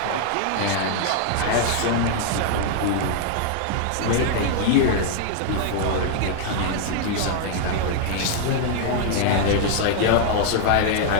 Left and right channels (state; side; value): different; both; correlation 0.00